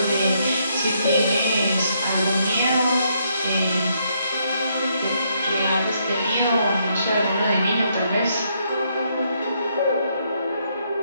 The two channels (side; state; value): both; inverted; correlation -0.74